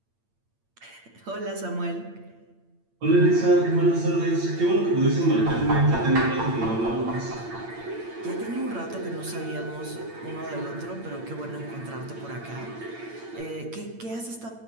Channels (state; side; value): late; left; 8.8 ms